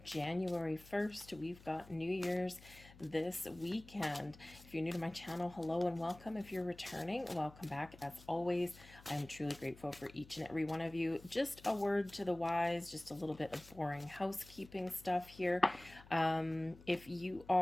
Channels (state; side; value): noise; left; hum, 21 dB below the sound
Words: 1st. We've got New Year's this weekend. If you're new to my channel, hello and welcome. If you're returning, welcome back. As always, I'm truly grateful for each and every one of you. Just a word to the wise, just a little bit of boring housekeeping stuff here. If you